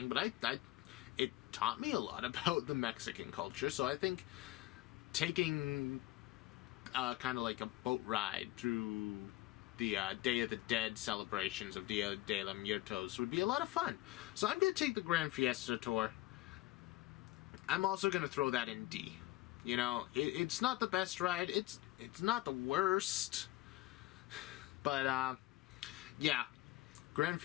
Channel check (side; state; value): right; quieter; 17.7 dB